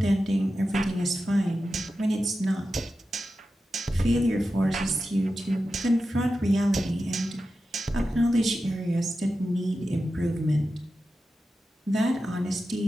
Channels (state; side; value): normal; both; correlation 0.92